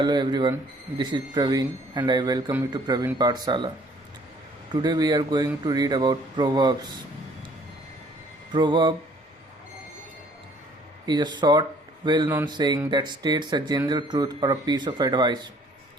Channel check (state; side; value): normal; both; correlation 0.58